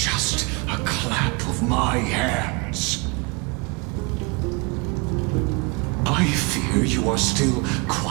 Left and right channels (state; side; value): quieter; left; 29.2 dB